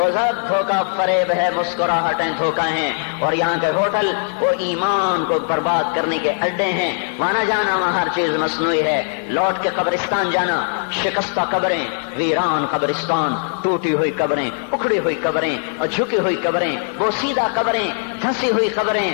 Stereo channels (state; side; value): silent; right; 65 dB below the other